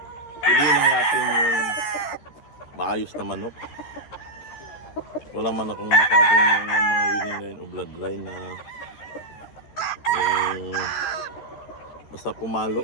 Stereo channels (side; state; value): right; late; 13 ms